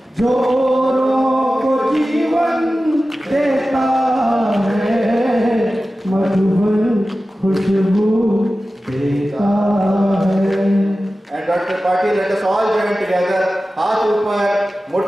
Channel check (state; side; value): normal; both; correlation 0.95